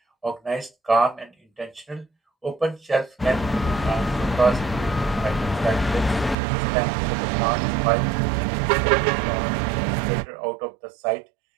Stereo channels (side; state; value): left; drops out; at 6.4 s